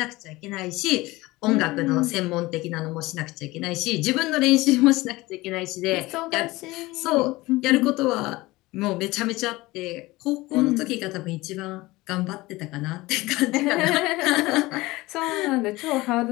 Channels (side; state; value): right; quieter; 20.2 dB